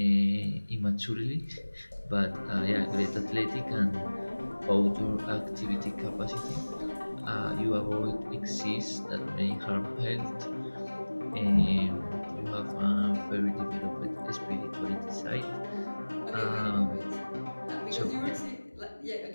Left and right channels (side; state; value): both; inverted; correlation -1.00